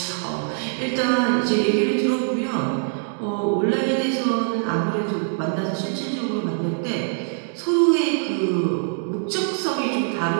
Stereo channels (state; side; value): silent; left; 63 dB below the other